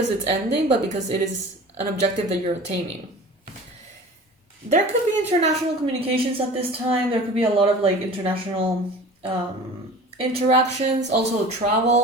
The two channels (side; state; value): both; normal; correlation 0.40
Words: it's ending, but because it is an objective that you're attaining. There could be international communications at this time. There could be a lot of like international interactions, also